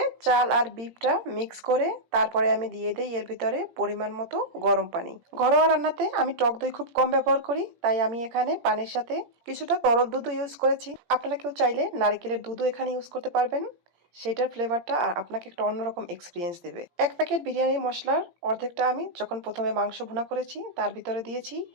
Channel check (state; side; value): late; left; 17 ms